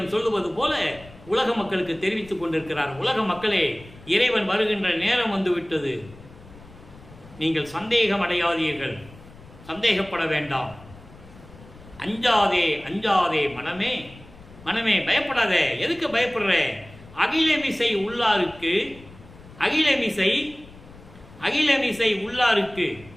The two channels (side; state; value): left; noise; rumble, 21 dB below the sound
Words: சொல்லுவது போல உலக மக்களுக்கு தெரிவித்துக் கொண்டிருக்கிறார். உலக மக்களே, இறைவன் வருகின்ற நேரம் வந்துவிட்டது, நீங்கள் சந்தேகம் அடையாதீர்கள், சந்தேகப்பட வேண்டாம். அஞ்சாதே அஞ்சாதே மனமே, மனமே பயப்படாதே. எதுக்கு பயப்படுற? அகிலமிசை உள்ளாருக்கு, அகிலமிசை உள்ளாருக்கு,